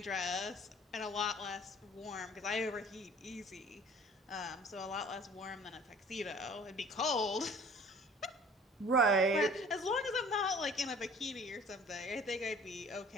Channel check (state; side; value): normal; both; correlation 0.50